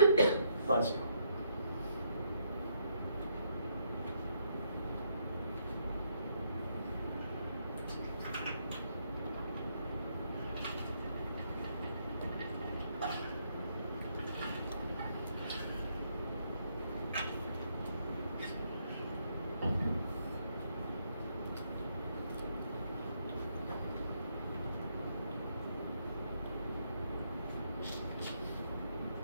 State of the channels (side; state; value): both; inverted; correlation -0.74